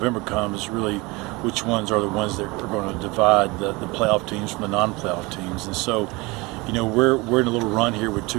comes, really which ones are the ones that are going to divide the playoff teams from the non-playoff teams. And so, we're in a little run here with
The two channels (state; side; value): quieter; left; 24.4 dB